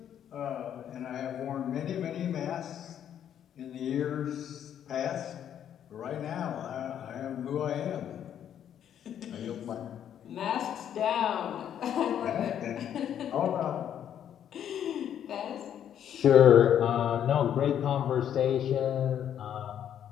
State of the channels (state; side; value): quieter; right; 9.7 dB